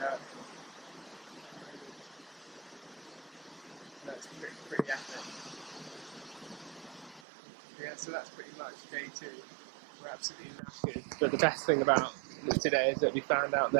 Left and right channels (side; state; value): left; drops out; at 7.2 s